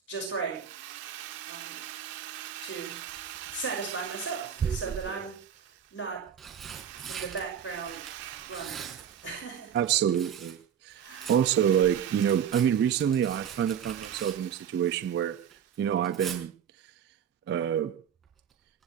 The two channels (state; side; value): quieter; left; 8.6 dB